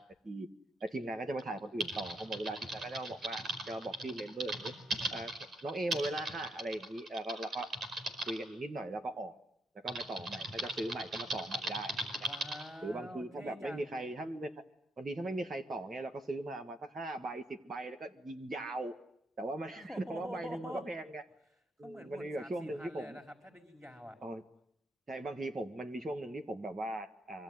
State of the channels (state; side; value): normal; both; correlation 0.76